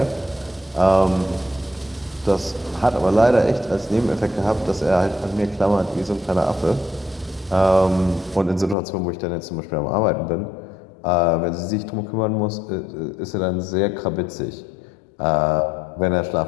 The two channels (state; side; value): drops out; right; at 8.8 s